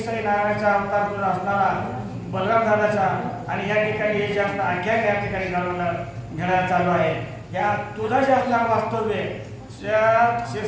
नारायणाचा अवतार तुझा असणारा बलराम दादाचा आणि या ठिकाणी हे जे असणार आख्यान या ठिकाणी घडायला चालू आहे या तुझा जे असणारं वास्तव्य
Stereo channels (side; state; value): both; identical; correlation 1.00